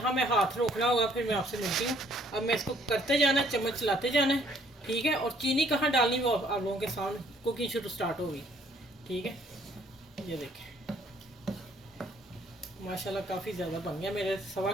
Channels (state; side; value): normal; both; correlation 0.63